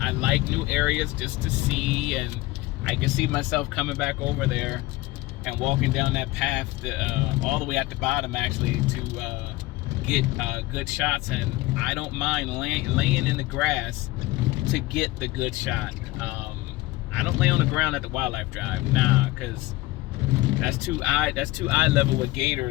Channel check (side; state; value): right; quieter; 19.2 dB